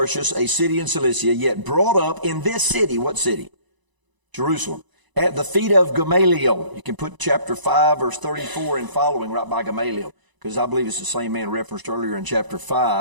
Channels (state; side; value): late; left; 1.0 ms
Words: a city in Cilicia, yet brought up in this city. What city? Jerusalem. At the feet of Gamaliel. You can put chapter 5, verse 34 and following right by Gamaliel, because I believe it's the same man referenced earlier in chapter